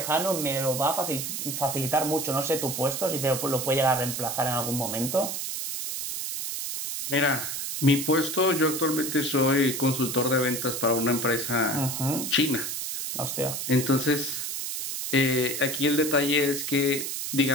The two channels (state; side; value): noise; right; hiss, 4 dB below the sound